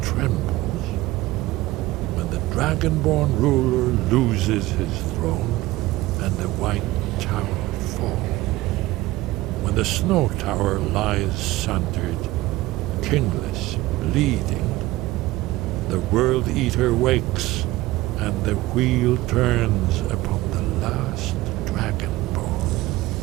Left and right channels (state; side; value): quieter; left; 18.1 dB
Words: trembles. When the Dragonborn ruler loses his throne and the white tower falls. When the snow tower lies sundered, kingless, bleeding, the World Eater wakes, and the wheel turns upon the last Dragonborn.